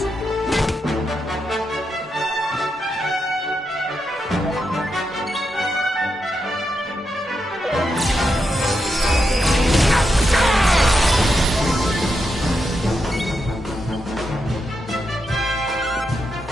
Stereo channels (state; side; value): normal; both; correlation 0.84